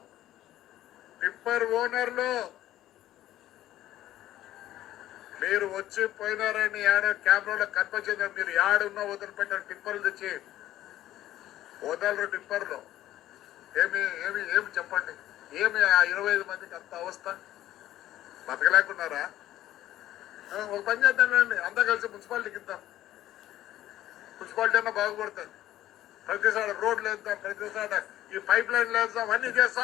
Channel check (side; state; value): right; quieter; 13.7 dB